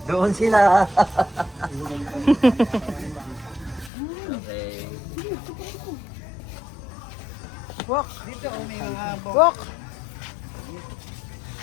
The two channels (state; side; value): drops out; right; at 3.9 s